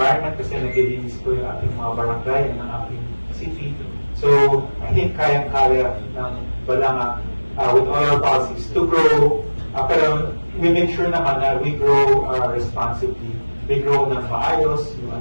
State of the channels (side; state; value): both; inverted; correlation -1.00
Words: kasi naglilinis po yung ating mga barangay ng ating city. So, I think kayang-kaya ng Balanga with all our policies to grow, pero we make sure naman na we grow responsibly. We grow ng maayos,